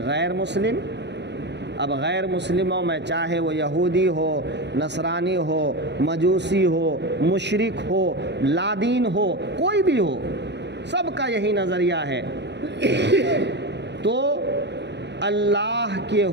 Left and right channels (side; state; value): left; late; 0.50 ms